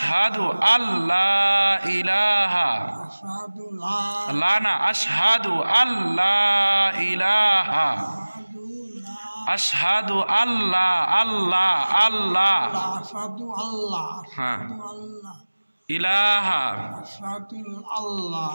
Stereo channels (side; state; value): both; inverted; correlation -1.00